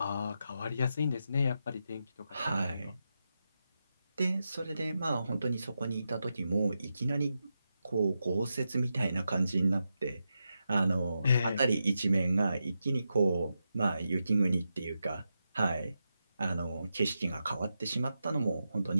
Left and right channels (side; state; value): both; inverted; correlation -0.88